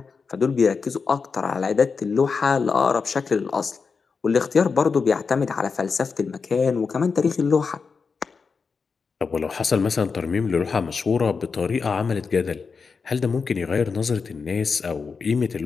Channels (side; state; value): right; quieter; 5.2 dB